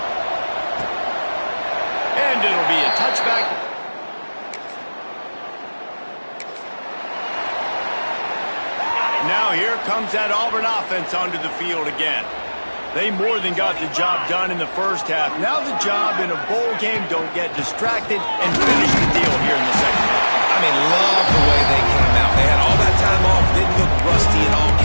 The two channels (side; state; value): both; inverted; correlation -1.00